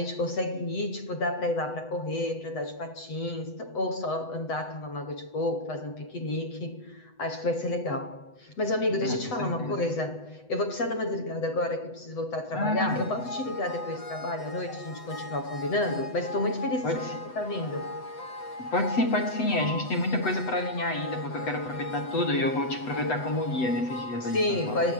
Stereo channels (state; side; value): late; right; 8.0 ms